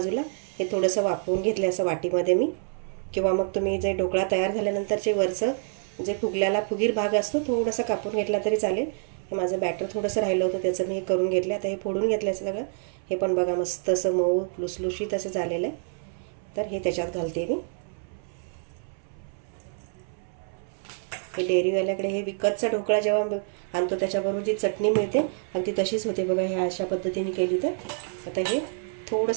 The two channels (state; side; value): silent; left; 60 dB below the other